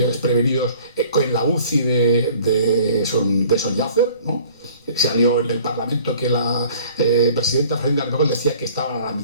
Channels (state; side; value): inverted; both; correlation -0.50